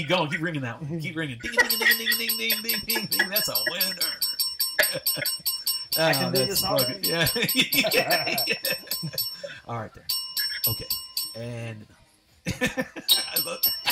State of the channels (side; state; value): both; identical; correlation 1.00